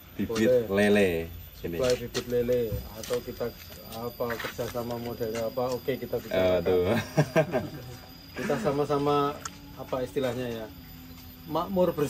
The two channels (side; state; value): both; identical; correlation 1.00